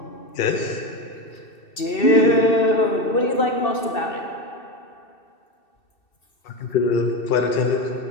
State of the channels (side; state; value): right; late; 2.7 ms